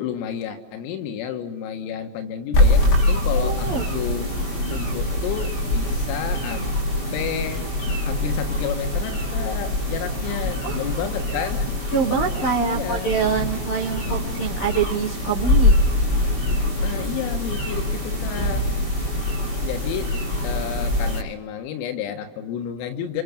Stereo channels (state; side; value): late; right; 22 ms